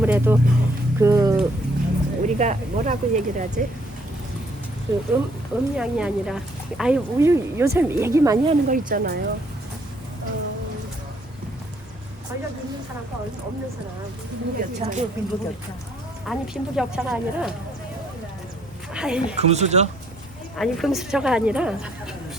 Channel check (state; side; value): normal; both; correlation 0.66